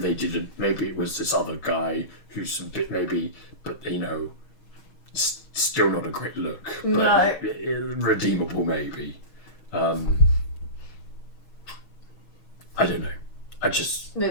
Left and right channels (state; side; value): late; right; 6.3 ms